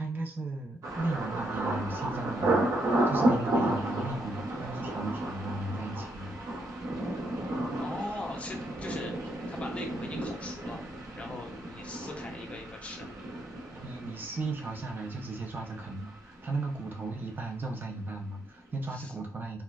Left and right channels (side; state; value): both; normal; correlation 0.77